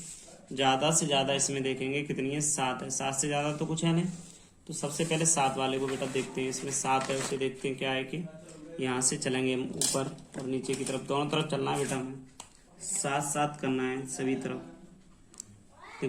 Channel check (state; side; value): identical; both; correlation 1.00